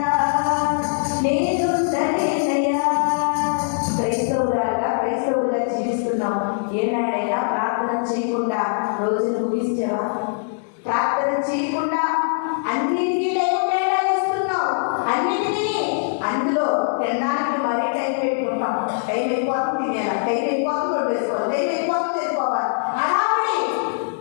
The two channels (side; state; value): right; silent; digital silence